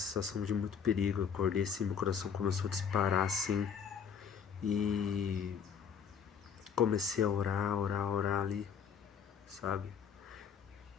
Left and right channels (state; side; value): quieter; right; 7.0 dB